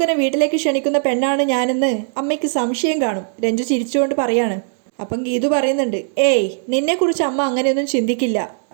വീട്ടിലേക്ക് ക്ഷണിക്കുന്ന പെണ്ണാണ് ഞാനെന്ന് അമ്മയ്ക്ക് സംശയം കാണും. രഞ്ജു ചിരിച്ചുകൊണ്ട് പറയാണ്. അപ്പം ഗീതു പറയുന്നുണ്ട്, ഏയ് നിന്നെക്കുറിച്ച് അമ്മ അങ്ങനെയൊന്നും ചിന്തിക്കില്ല.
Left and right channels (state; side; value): silent; left; digital silence